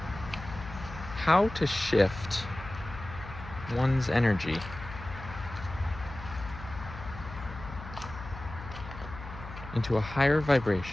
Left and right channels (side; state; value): left; noise; hum, 12 dB below the sound